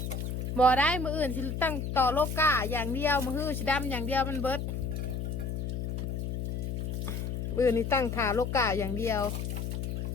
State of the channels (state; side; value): noise; left; hum, 3 dB below the sound